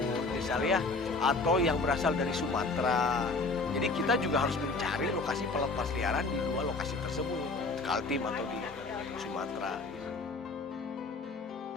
misalnya, atau yang berasal dari Sumatera. Jadi kita juga harus mencari lokasi pelepas liaran di 2 lokasi tersebut, Kaltim atau di Sumatera.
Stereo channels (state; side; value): quieter; right; 3.6 dB